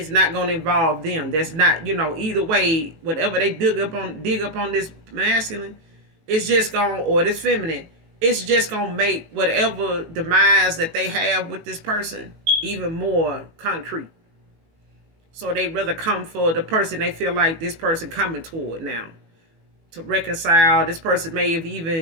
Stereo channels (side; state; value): left; late; 18 ms